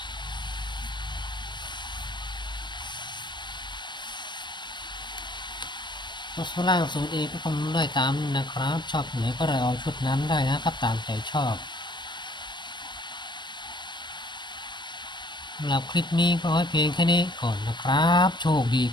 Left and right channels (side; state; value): right; late; 0.22 ms